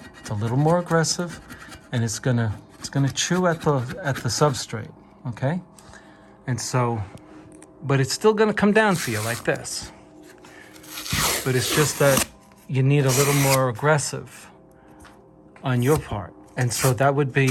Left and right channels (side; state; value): both; identical; correlation 1.00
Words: It's a little more aggressive, and it's gonna chew at the substrate, okay? And so, but it's still gonna come down for you like this. But it's just that you need a little more aggressive on your part. And so that would